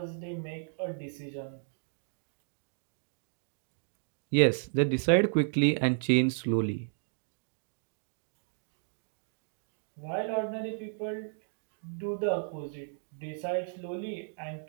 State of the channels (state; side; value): silent; left; digital silence